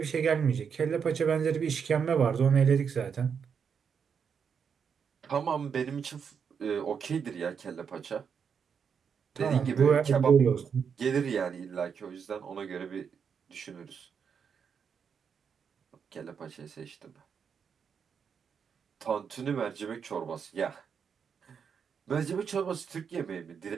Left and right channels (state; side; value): quieter; left; 6.8 dB